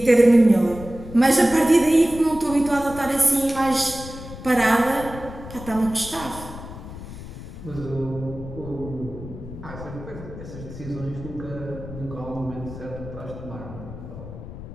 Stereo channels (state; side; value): noise; left; rumble, 12 dB below the sound